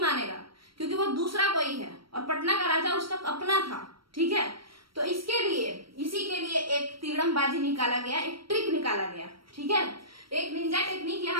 क्योंकि वो दूसरा कोई है और पटना का राजा उसका अपना था, ठीक है। तो इसके लिए, इसी के लिए एक तिगड़मबाजी निकाला गया, एक ट्रिक निकाला गया, ठीक है। एक निंजा टेक्निक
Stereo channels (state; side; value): late; left; 0.74 ms